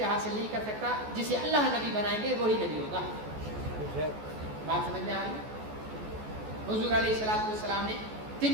حاصل نہیں کر سکتا. جسے اللہ نبی بنائیں گے وہی نبی ہوگا. بات سمجھ میں آ رہی ہے؟ حضور علیہ الصلوۃ والسلام نے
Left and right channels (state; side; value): late; left; 14 ms